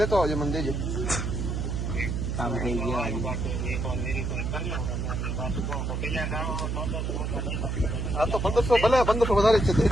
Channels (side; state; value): right; noise; hum, 1 dB below the sound